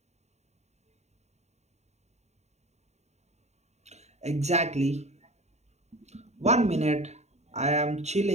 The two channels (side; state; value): left; late; 0.32 ms